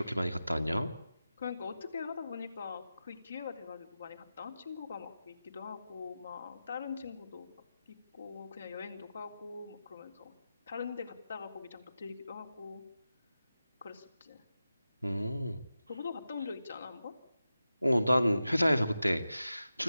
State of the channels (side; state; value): both; inverted; correlation -0.92